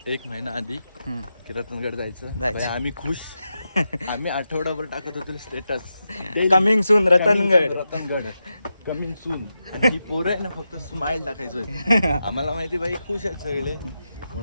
1 महिना आधी की रतनगड जायचं. आम्ही खुश. आम्ही आठवडाभर टाकत होतो status, coming soon Ratangad coming soon. आणि ही पोरं आहे ना, फक्त स्माइल टाकायचो. आम्हाला माहिती बाई खुश आहेत सगळे,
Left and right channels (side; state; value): both; inverted; correlation -0.88